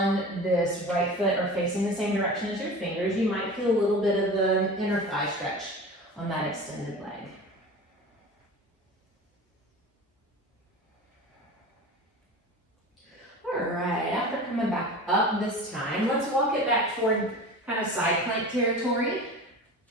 this right foot are facing the same direction as your fingers, you might feel a little bit of the inner thigh stretch on that extended leg. All right, after coming back up this time, let's walk it back toward kind of side plank territory.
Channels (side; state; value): both; normal; correlation 0.34